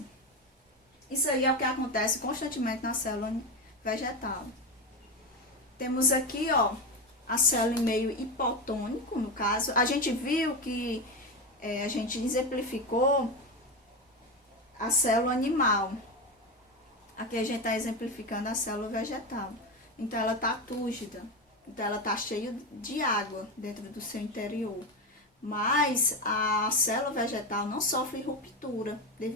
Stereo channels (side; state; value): both; normal; correlation 0.17